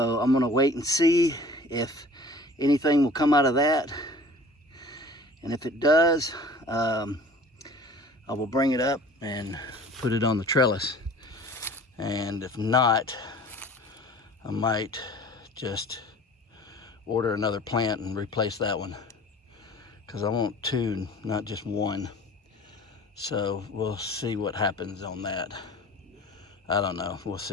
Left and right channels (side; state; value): both; normal; correlation 0.46